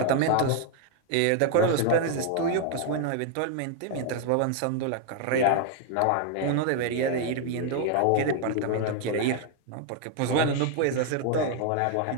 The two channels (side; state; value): both; different; correlation 0.00